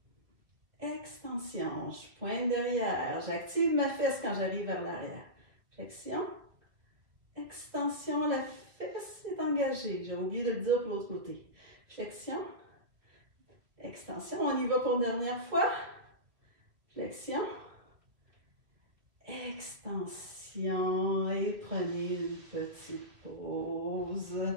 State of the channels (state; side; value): late; left; 2.4 ms